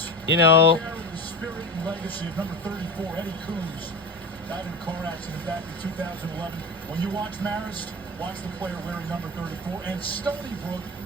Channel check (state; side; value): normal; both; correlation 0.27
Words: You know, the spirit and legacy of number 34, Eddie Coombs, died in a car accident back in 2011. When you watch Marist, watch the player wearing number 34, and Stony Brook